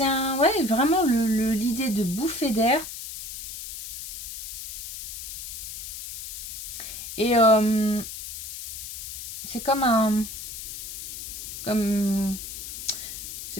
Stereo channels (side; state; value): left; noise; hiss, 8 dB below the sound